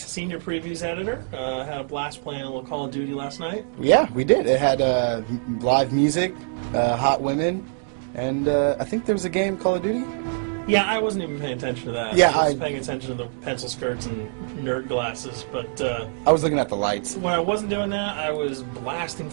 Previews Editor. Had a blast playing a little Call of Duty last night. Yeah, we did. It had live music, hot women, and I think there was a game, Call of Duty? Yeah, I wasn't even paying attention to that. Yeah, I was paying attention to the pencil skirts and nerd glasses, but I was looking at the lights. when I wasn't doing that, I was blasting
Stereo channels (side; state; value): left; silent; digital silence